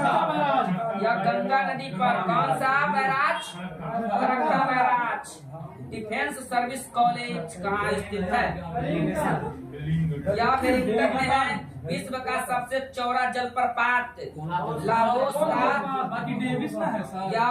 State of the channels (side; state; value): both; identical; correlation 1.00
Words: यह गंगा नदी पर। कौन सा बैराज? रक्षा बैराज। डिफेंस सर्विस कॉलेज कहाँ स्थित है? यह मेरे उत्तर में है। विश्व का सबसे चौड़ा जलप्रपात लाओस का बाकी डेविस ना है सर या